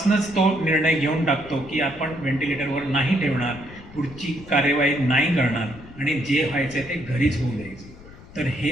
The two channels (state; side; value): noise; left; rumble, 19 dB below the sound